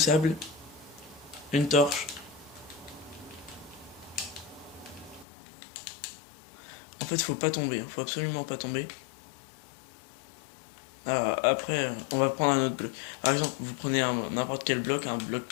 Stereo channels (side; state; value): right; drops out; at 5.2 s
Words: une torche. En fait, faut pas tomber, faut absolument pas tomber. Après, on va prendre un autre bloc. Par exemple, vous prenez n'importe quel bloc, un bloc